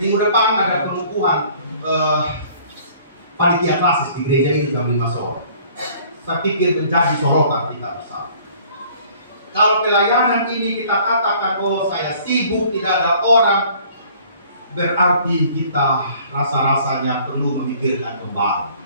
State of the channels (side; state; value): both; inverted; correlation -0.54